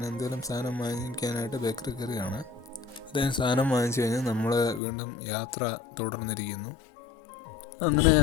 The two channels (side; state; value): right; drops out; at 4.8 s